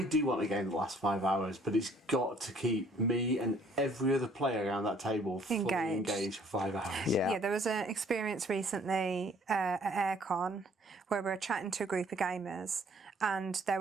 do want a game that lasts 5 hours, but it's got to keep me and every other player around that table fully engaged for 5 hours. Yeah, there was an experience recently at AirCon where we were chatting to a group of gamers and there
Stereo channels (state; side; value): normal; both; correlation 0.59